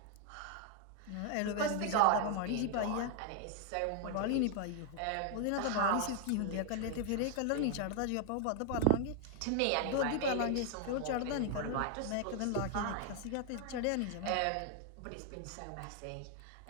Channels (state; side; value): different; both; correlation 0.00